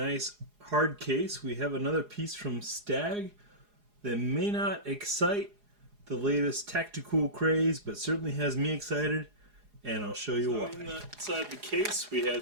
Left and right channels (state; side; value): late; left; 4.8 ms